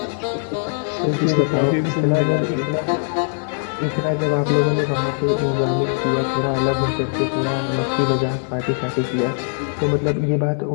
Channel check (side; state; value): right; silent; 63 dB below the other